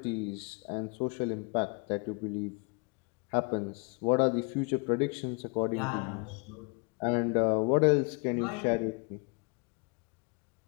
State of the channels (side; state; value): right; quieter; 32.2 dB